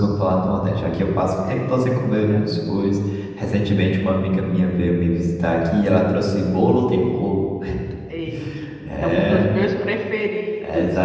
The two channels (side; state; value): both; identical; correlation 1.00